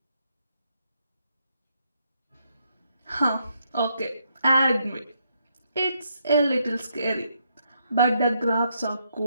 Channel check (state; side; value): inverted; both; correlation -0.77